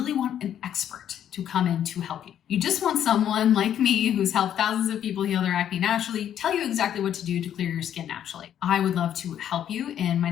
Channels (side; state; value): right; quieter; 10.1 dB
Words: want an expert to come in to help you. You just want someone like me who's helped thousands of people heal their acne naturally, tell you exactly what to do to clear your skin naturally. I would love to help you in my